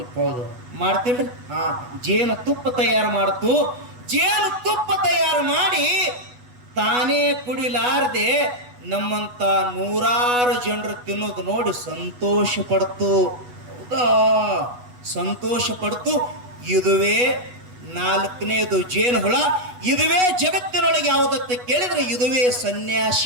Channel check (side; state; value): left; late; 8.1 ms